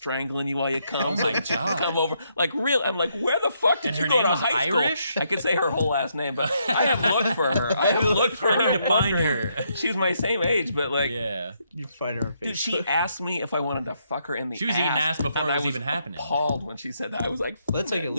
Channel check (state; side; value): inverted; both; correlation -0.76